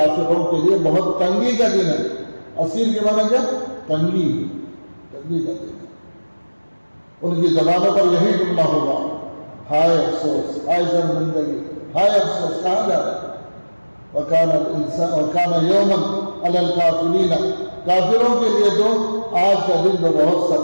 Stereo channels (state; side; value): inverted; both; correlation -1.00